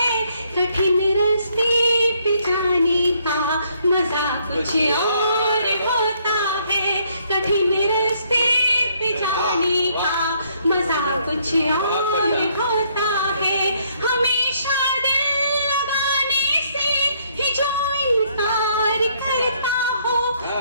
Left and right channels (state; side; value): inverted; both; correlation -0.68